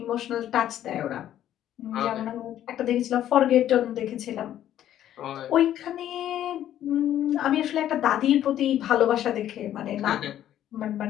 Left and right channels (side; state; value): right; quieter; 11.6 dB